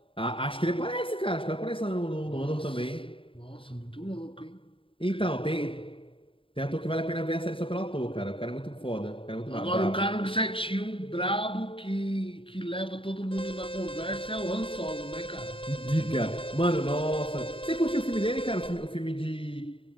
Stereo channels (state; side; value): late; right; 0.26 ms